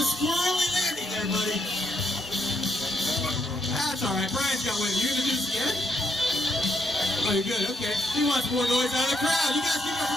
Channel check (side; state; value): both; normal; correlation 0.75